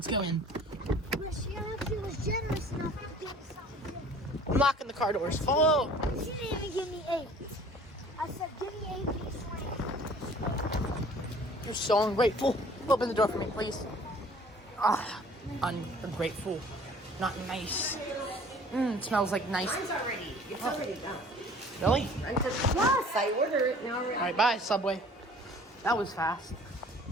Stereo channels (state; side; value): normal; both; correlation 0.50